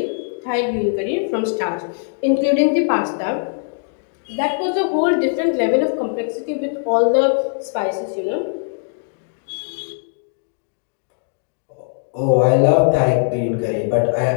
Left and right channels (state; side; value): silent; right; digital silence